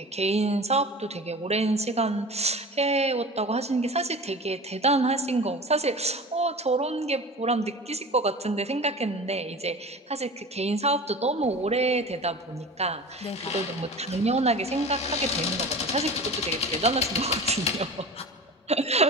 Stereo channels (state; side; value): normal; both; correlation 0.35